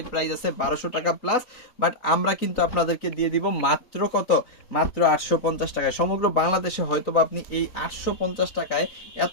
প্রাইস আছে 1200 টাকা প্লাস। বাট আমরা কিন্তু আপনাদেরকে দিয়ে দিব মাত্র কত, মাত্র 850 টাকায়। সমগ্র বাংলাদেশে হয়তো বা আপনি এই 850 টাকায়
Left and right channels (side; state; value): right; late; 3.9 ms